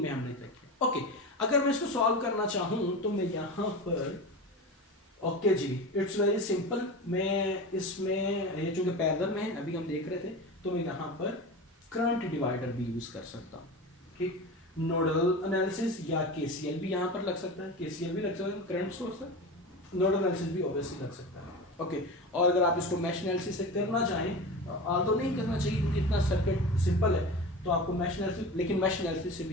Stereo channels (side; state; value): both; normal; correlation 0.28